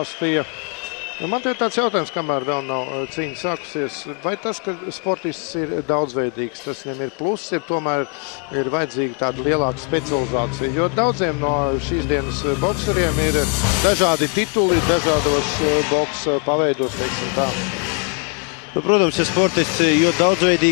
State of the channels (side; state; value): right; quieter; 36.6 dB